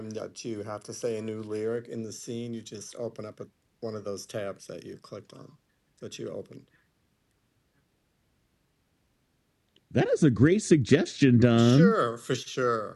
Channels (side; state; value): both; identical; correlation 1.00